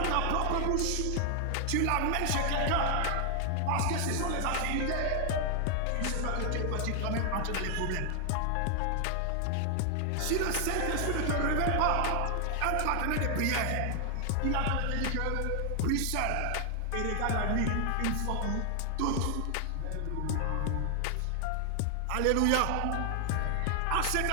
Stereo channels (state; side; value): different; both; correlation 0.00